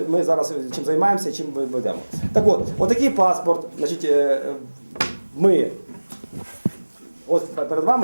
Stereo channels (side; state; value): both; inverted; correlation -1.00